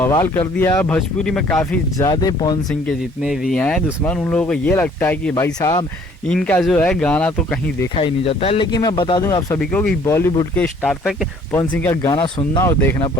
कर दिया। भोजपुरी में काफ़ी ज़्यादा पवन सिंह के जितने भी हैं दुश्मन, उन लोगों को ये लगता है कि भाई साहब इनका जो है गाना तो कहीं देखा ही नहीं जाता है। लेकिन मैं बता दूं आप सभी को कि बॉलीवुड के स्टार तक पवन सिंह का गाना सुनना और देखना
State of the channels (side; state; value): both; normal; correlation 0.58